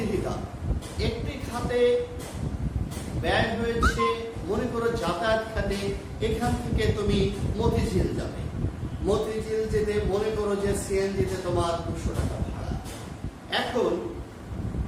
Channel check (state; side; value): identical; both; correlation 1.00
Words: একটি খাতে ব্যয় হয়েছে, মনে করো যাতায়াত খাতে, এখান থেকে তুমি মতিঝিল যাবে। মতিঝিল যেতে মনে করো যে সিএনজিতে তোমার 200 টাকা ভাড়া। এখন